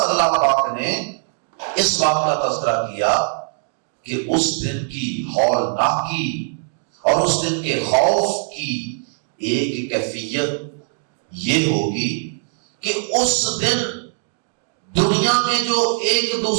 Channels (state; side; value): silent; left; digital silence